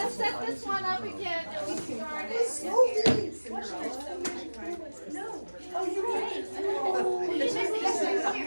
set this one up again and we started. No. Oh, you're right.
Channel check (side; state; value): both; inverted; correlation -1.00